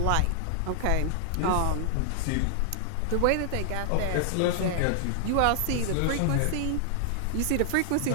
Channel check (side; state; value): both; different; correlation -0.01